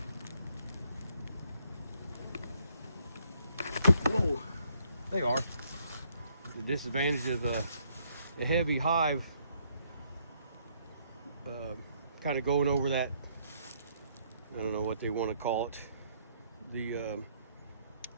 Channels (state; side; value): inverted; both; correlation -0.70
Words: Whoa, they are. The disadvantage of the heavy hive kind of going over that, I don't know what they want to call it, the